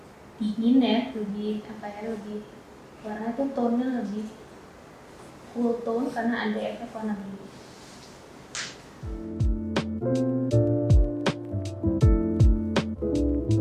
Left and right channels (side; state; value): both; identical; correlation 1.00